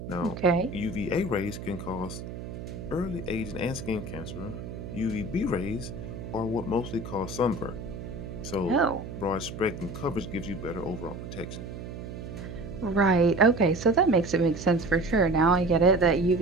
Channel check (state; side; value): noise; right; hum, 9 dB below the sound